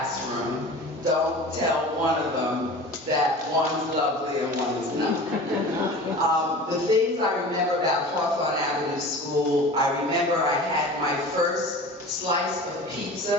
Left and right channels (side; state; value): both; normal; correlation 0.37